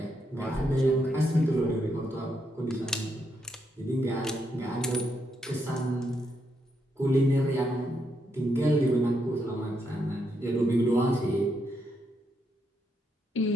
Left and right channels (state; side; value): normal; both; correlation 0.79